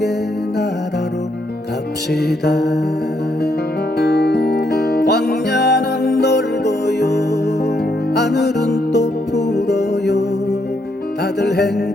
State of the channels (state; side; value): normal; both; correlation 0.76